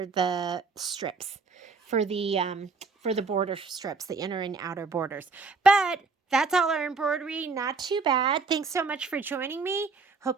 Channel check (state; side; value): quieter; left; 4.4 dB